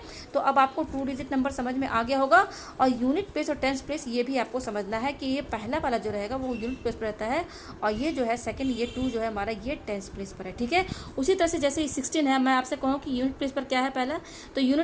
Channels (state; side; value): identical; both; correlation 1.00